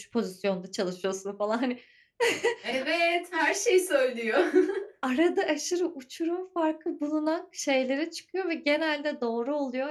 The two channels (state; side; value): identical; both; correlation 1.00